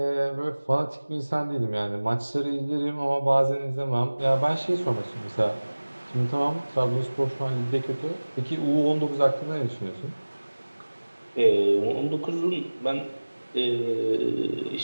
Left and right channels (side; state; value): both; inverted; correlation -1.00